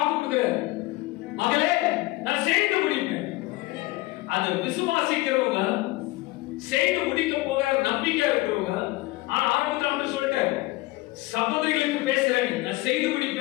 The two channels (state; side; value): quieter; right; 20.4 dB